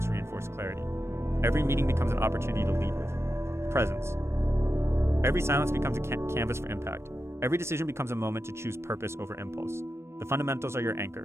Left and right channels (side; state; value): left; late; 0.13 ms